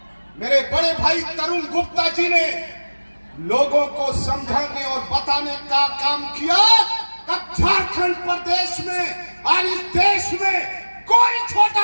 मेरे बड़े भाई तरुण गुप्ता जी ने लोगों को समझाने और बताने का काम किया। अब झारखंड प्रदेश में और इस देश में कोई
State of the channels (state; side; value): inverted; both; correlation -1.00